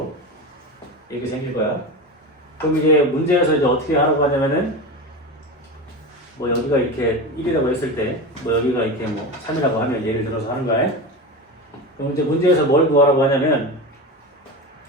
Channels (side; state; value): both; normal; correlation 0.24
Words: 이렇게 생길 거야. 그럼 이제 문제에서 이제 어떻게 하라고 하냐면은 뭐 여기가 이렇게 1이라고 했을 때 뭐 여기가 이렇게 뭐 3이라고 하면 예를 들어서 하는 거야. 그럼 이제 문제에서 뭘 구하라고 하냐면